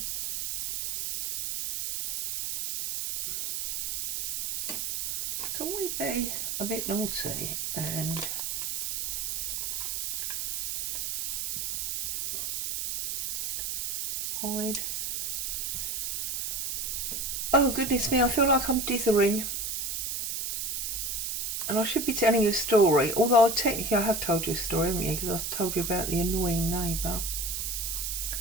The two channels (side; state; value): right; noise; hiss, 2 dB below the sound